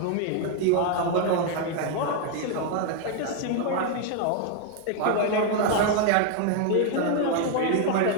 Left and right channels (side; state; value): both; different; correlation 0.01